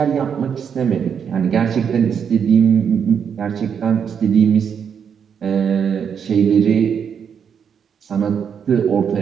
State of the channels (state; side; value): quieter; left; 7.4 dB